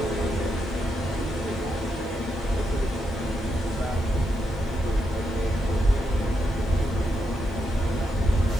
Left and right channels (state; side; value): noise; right; hiss, 29 dB below the sound